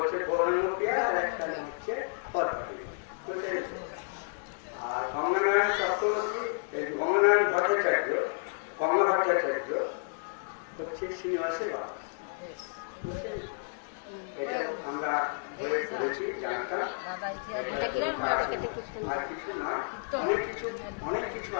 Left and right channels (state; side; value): silent; right; digital silence